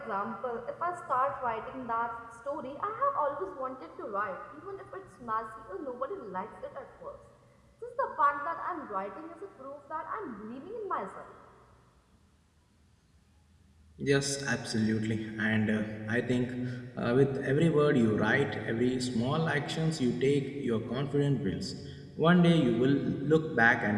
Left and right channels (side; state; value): both; identical; correlation 1.00